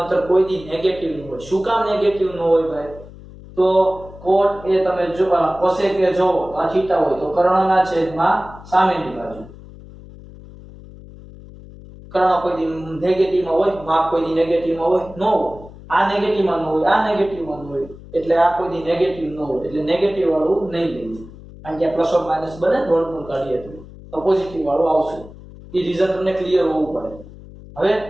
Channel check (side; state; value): left; noise; hum, 18 dB below the sound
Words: કોઈ દી નેગેટિવ ન હોય. શું કામ નેગેટિવ ન હોય ભાઈ? તો cot એ તમે જો cosec એ જો આ થીટા હોય તો કર્ણના છેદમાં સામેની બાજુ. કર્ણ કોઈ દી નેગેટિવમાં હોય, માપ કોઈ દી નેગેટિવમાં હોય ન હોય. આ નેગેટિવમાં ન હોય, આ નેગેટિવમાં ન હોય. એટલે આ કોઈ દી નેગેટિવ ન હોય. એટલે નેગેટિવ વાળું નહીં લઈએ. કારણ કે પ્લસ ઓર માઈનસ બને વર્ગમૂળ કાઢીએ તો પોઝિટિવ વાળું આવશે. એ રીઝન તમને ક્લિયર હોવું પડે. હવે